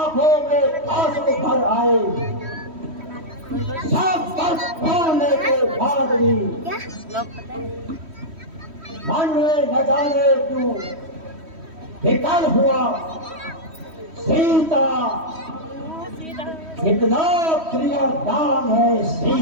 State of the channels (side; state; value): left; late; 3.1 ms